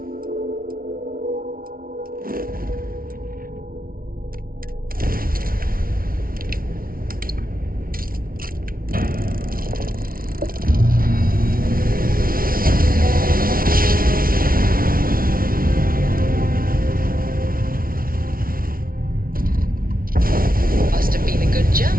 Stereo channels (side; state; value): left; late; 0.42 ms